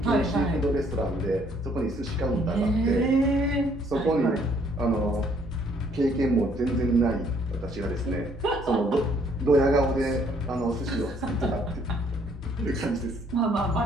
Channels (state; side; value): normal; both; correlation 0.64